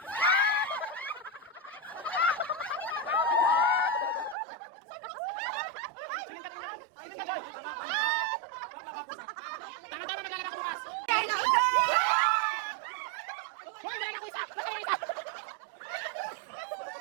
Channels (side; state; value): left; drops out; at 4.4 s